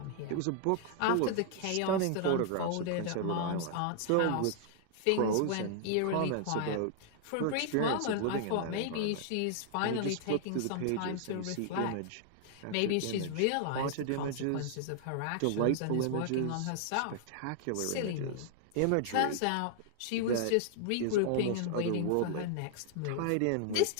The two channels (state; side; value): different; both; correlation 0.00